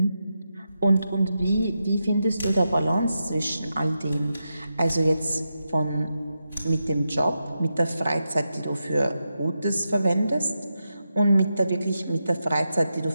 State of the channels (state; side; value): inverted; both; correlation -0.88